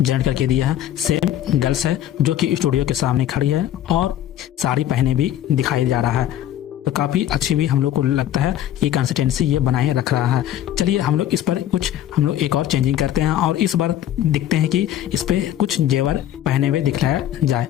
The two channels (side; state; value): right; quieter; 11.7 dB